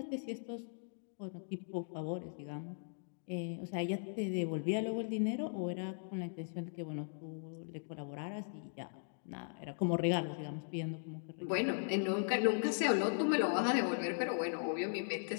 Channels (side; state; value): right; silent; digital silence